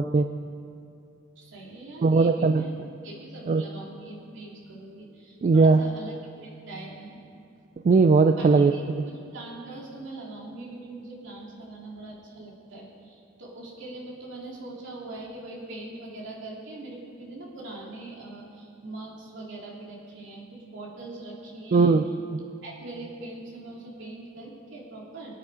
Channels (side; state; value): left; quieter; 3.6 dB